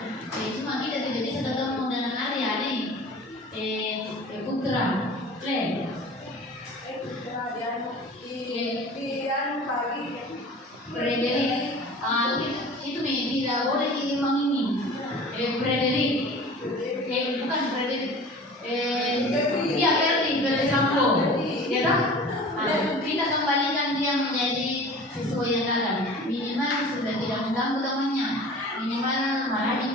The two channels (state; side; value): normal; both; correlation 0.41